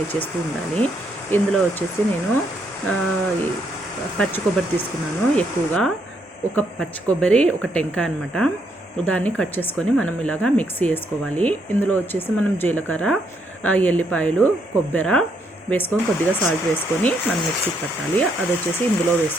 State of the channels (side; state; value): both; normal; correlation 0.75